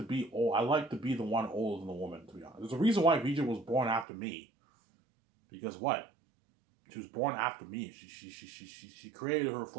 be old. I like to be the one older than the woman. To be honest, there's a reason why Vijay was born after me. Because what? She was born after me. She created her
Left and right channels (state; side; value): drops out; left; at 4.0 s